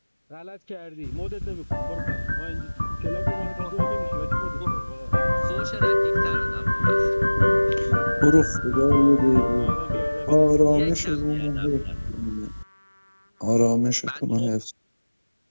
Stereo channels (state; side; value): inverted; both; correlation -1.00